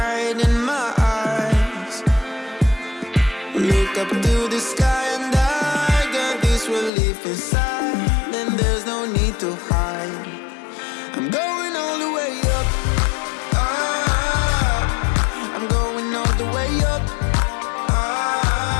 in my eyes. Look up to the sky and I got this relief inside. Then there's no need to hide. I'm going all the way up. I'm going all the way up.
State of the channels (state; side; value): drops out; right; at 6.9 s